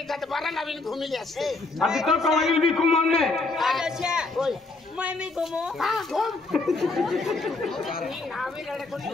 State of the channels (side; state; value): right; quieter; 3.4 dB